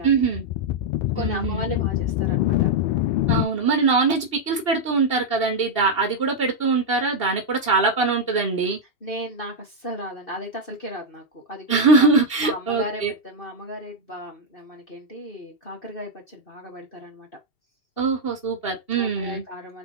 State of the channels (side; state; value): right; late; 2.7 ms